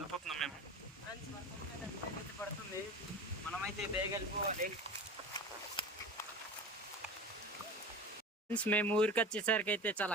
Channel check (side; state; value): both; normal; correlation 0.33